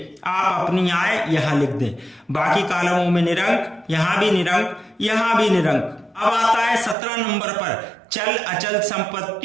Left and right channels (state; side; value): drops out; left; at 7.0 s